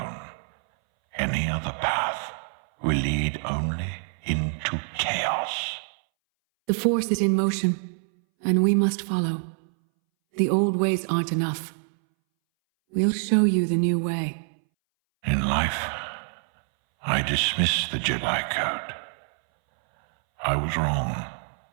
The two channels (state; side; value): silent; left; 60 dB below the other